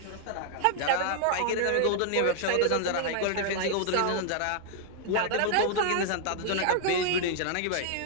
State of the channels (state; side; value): different; both; correlation 0.00